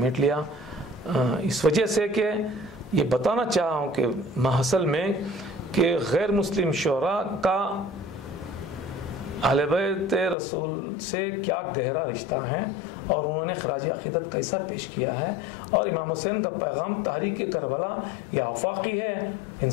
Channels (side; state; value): right; drops out; at 10.4 s